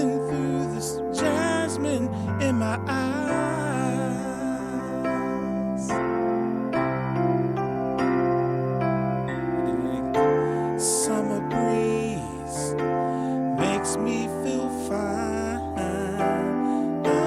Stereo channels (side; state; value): both; identical; correlation 1.00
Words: through this jasmine in my eyes. Summer breeze makes me feel fine,